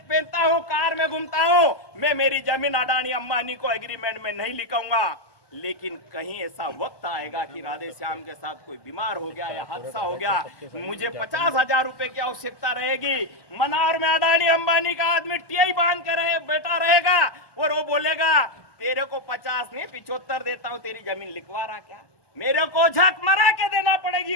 हूं, कार में घूमता हूं, मैं मेरी जमीन अडानी अंबानी को एग्रीमेंट में नहीं लिखूंगा। लेकिन कहीं ऐसा वक्त आएगा कि राधे श्याम के साथ कोई बीमार हो गया या हादसा हो गया, मुझे 50,000 रुपए की आवश्यकता रहेगी। मनार में अडानी अंबानी का आदमी टीआई बांध के बैठा रहेगा और वो बोलेगा तेरे को 50 नहीं 75 देता हूं, तेरी जमीन लिखवा रहा क्या? मेरे को झक मरा के देना पड़ेगी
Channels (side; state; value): right; late; 1.2 ms